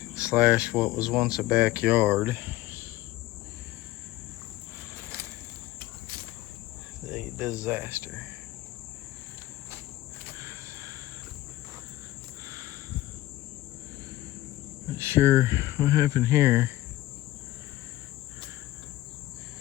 slash what was once a backyard. A disaster. Not sure what happened here.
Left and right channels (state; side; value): quieter; right; 16.2 dB